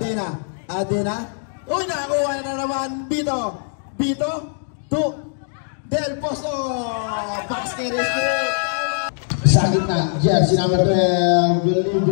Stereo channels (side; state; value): right; silent; digital silence